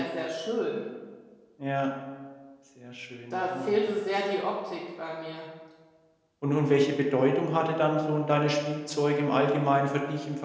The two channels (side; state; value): both; identical; correlation 1.00